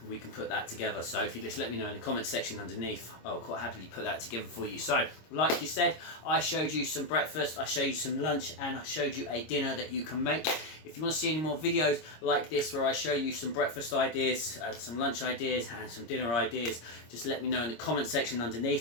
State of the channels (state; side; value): late; right; 26 ms